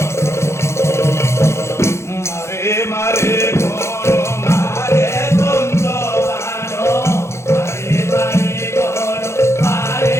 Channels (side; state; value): right; late; 0.13 ms